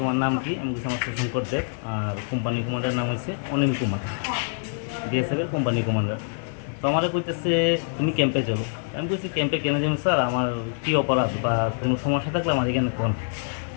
নাম কি আমি কিছু আমার শঙ্কর দেব আর কোম্পানি কমান্ডার নাম হচ্ছে অনিল কুমার বিএসএফের কোম্পানি কমান্ডার তো আমার কইতেছে তুমি ক্যাম্পে চলো আমি কইছি ক্যাম্পে কেন যাবো স্যার আমার কী অপরাধ বা কোনো সমস্যা থাকলে আমার এখানে কোন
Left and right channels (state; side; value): silent; right; 59 dB below the other